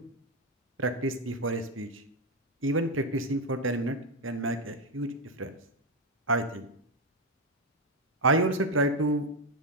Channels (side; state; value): both; normal; correlation 0.06